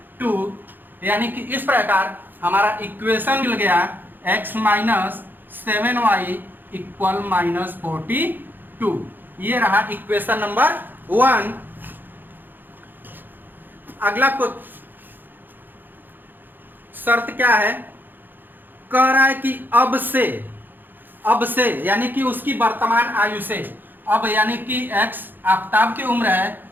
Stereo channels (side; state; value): left; late; 0.091 ms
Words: यानी कि इस प्रकार हमारा इक्वेशन मिल गया x माइनस 7y इक्वल -42। ये रहा इक्वेशन नंबर 1। अगला को शर्त क्या है, कह रहा है कि अब से यानी कि उसकी वर्तमान आयु से, अब यानी कि x आफताब की उम्र है